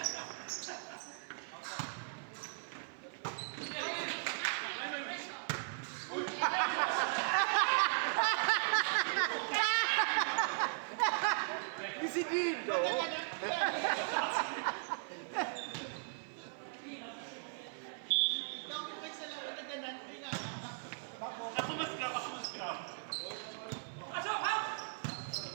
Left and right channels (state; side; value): silent; left; 53 dB below the other